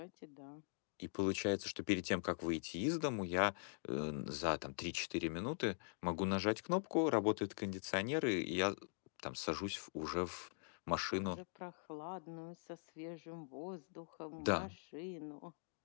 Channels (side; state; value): right; silent; digital silence